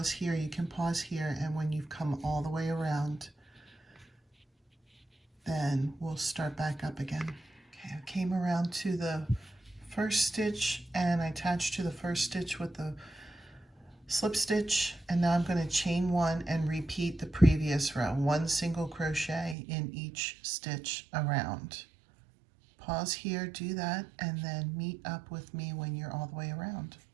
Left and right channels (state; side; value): drops out; left; at 19.6 s